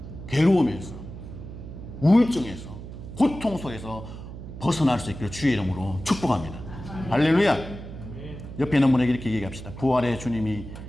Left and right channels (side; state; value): right; noise; hum, 12 dB below the sound